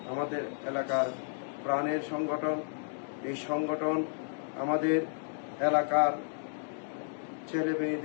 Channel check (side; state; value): right; silent; digital silence